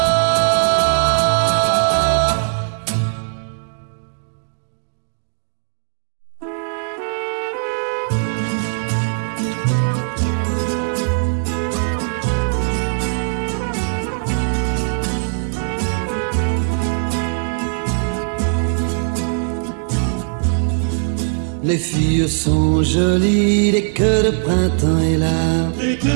Les filles sont jolies dès que le printemps est là.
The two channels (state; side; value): silent; left; digital silence